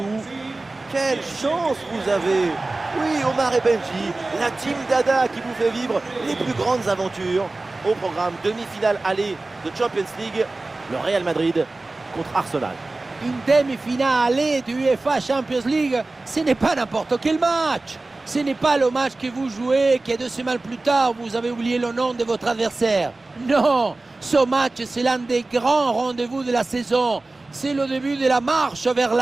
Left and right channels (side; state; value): left; quieter; 3.2 dB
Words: Quelle chance vous avez! Oui, Omar et Benji, la team Dada qui vous fait vivre les plus grandes aventures. Au programme demi-finale aller de Champions League, le Real Madrid contre Arsenal. Une demi-finale du UEFA Champions League, ce n'est pas n'importe quel match. Ce n'est pas le match que vous jouez, que 2 semaines plus tard, vous avez oublié le nom de votre adversaire. Non, ce match, c'est l'un des grands rendez-vous de la saison. C'est le début de la marche vers